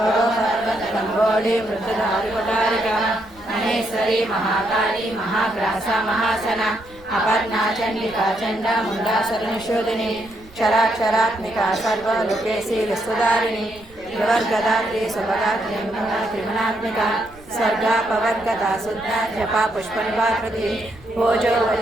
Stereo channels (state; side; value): noise; right; rumble, 24 dB below the sound